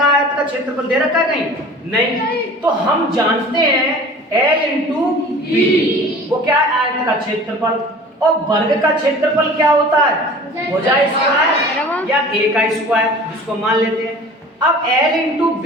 है, आयत का क्षेत्रफल दे रखा है कहीं नहीं, तो हम जानते हैं L इंटू बी, वो क्या है आयत का क्षेत्रफल, और वर्ग का क्षेत्रफल क्या होता है भुजा स्क्वायर या a का स्क्वायर, जिसको मान लेते हैं। अब L इंटू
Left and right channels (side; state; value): both; normal; correlation 0.43